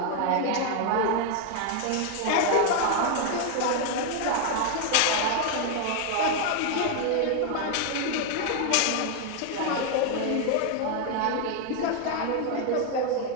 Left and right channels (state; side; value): different; both; correlation 0.00